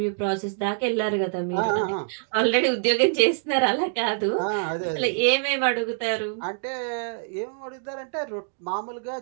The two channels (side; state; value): left; silent; digital silence